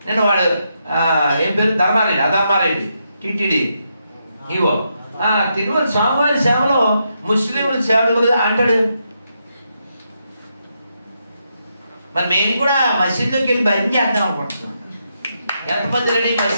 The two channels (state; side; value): inverted; both; correlation -0.81